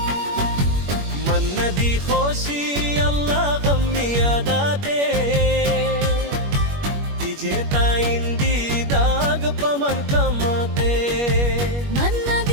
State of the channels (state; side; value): late; left; 21 ms